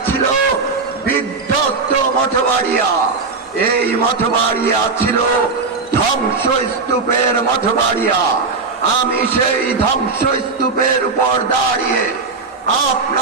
ছিল বিধ্বস্ত মঠবাড়িয়া, এই মঠবাড়িয়া ছিল ধ্বংসস্তূপের মঠবাড়িয়া। আমি সেই ধ্বংসস্তূপের উপর দাঁড়িয়ে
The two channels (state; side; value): quieter; left; 4.3 dB